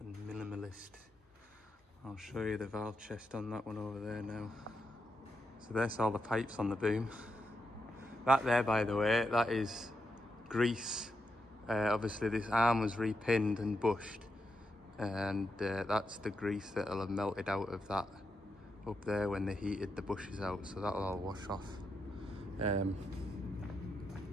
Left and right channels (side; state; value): both; normal; correlation 0.84